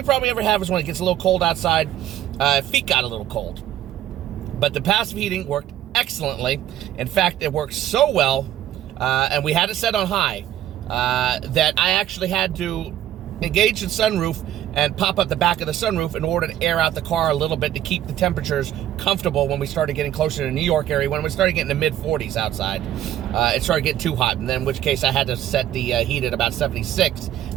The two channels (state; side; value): quieter; left; 12.0 dB